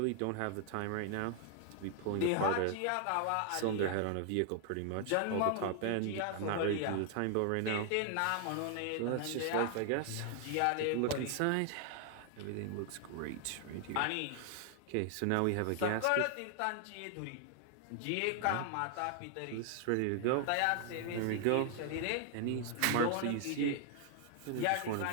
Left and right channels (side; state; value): both; different; correlation 0.00